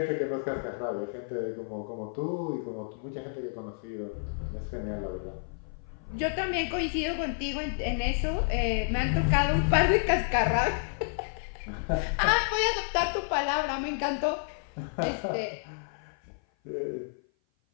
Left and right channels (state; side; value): silent; right; 55 dB below the other